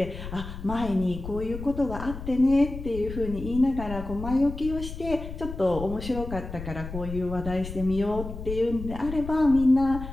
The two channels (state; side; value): noise; left; rumble, 9 dB below the sound